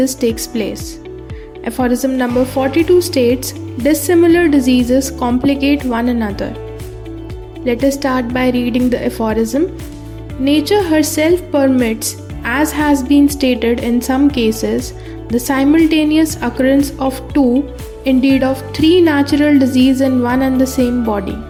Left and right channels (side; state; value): both; identical; correlation 1.00